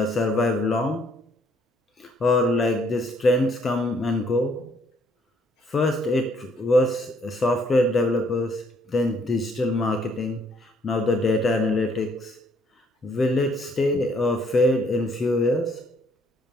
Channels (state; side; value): normal; both; correlation 0.66